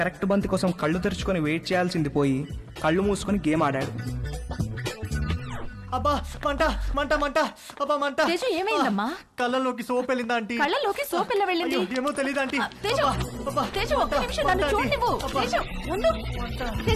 బంతి కోసం కళ్ళు తెరుచుకొని వెయిట్ చేయాల్సింది పోయి కళ్ళు మూసుకొని గేమ్ ఆడాడు. అబ్బా మంట మంట మంట, అబ్బా మంట. తేజు ఏమైందమ్మా? కళ్ళలోకి సోప్ వెళ్ళిందా ఆంటీ? కళ్ళలోకి సోప్ ఎలా వెళ్ళింది? అయ్యో, ఏమో తెలియదు ఆంటీ. తేజు, తేజు ఒక్క నిమిషం నన్ను చూడనివ్వు. తేజు ఉండు.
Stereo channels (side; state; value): both; identical; correlation 1.00